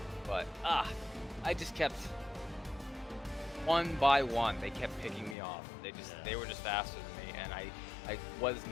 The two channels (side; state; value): right; drops out; at 5.4 s